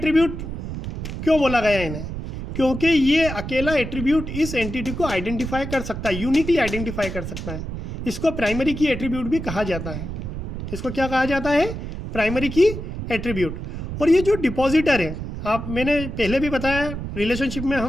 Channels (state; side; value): noise; right; rumble, 7 dB below the sound